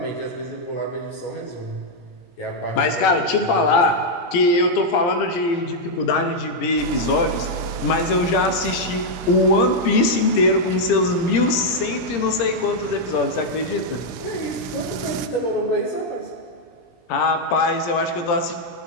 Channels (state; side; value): late; right; 17 ms